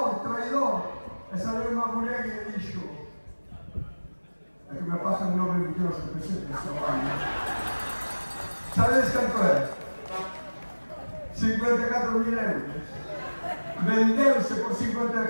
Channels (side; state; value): both; inverted; correlation -1.00